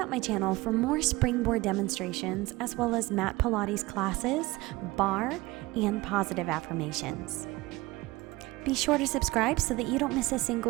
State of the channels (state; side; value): quieter; left; 20.8 dB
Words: out my channel for more springboard demonstrations as well as Mat Pilates classes, barre, and positive affirmations. Be sure to subscribe so that you don't miss a